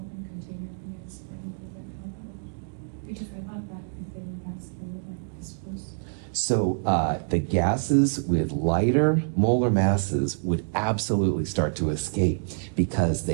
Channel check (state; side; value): silent; left; digital silence